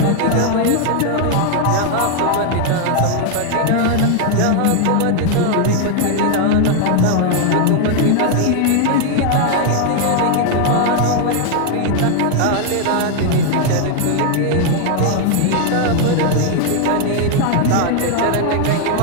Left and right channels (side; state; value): both; different; correlation 0.00